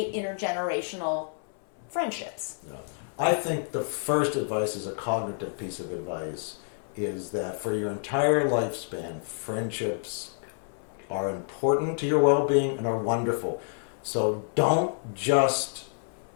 intergenerational friendships? Yeah. I think the first advice is a cognitive piece of advice, is that for your entire lifespan, friendships are important to your well-being and are wonderful. So don't just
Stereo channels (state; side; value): silent; right; 57 dB below the other